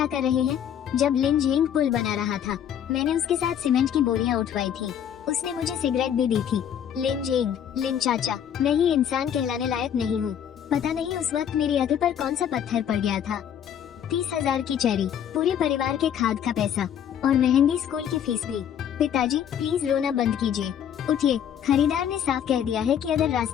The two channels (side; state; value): right; quieter; 9.3 dB